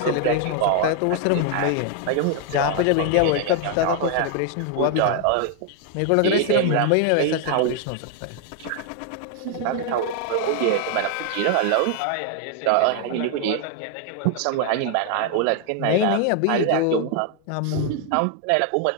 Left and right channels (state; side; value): different; both; correlation 0.00